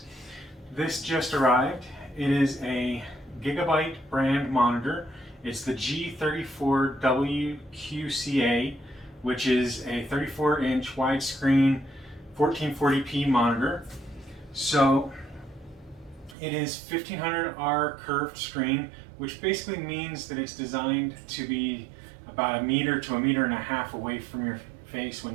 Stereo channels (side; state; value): left; drops out; at 16.4 s